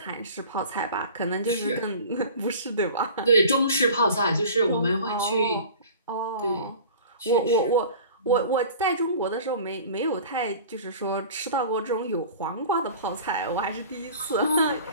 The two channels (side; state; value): both; inverted; correlation -0.41